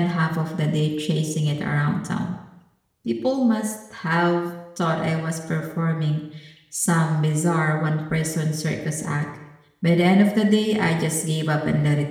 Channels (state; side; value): identical; both; correlation 1.00